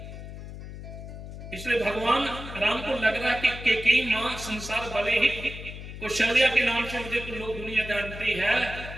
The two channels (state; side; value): noise; left; hum, 11 dB below the sound